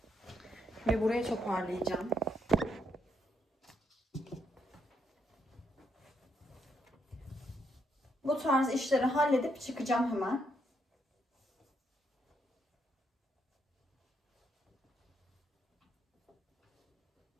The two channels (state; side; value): normal; both; correlation 0.76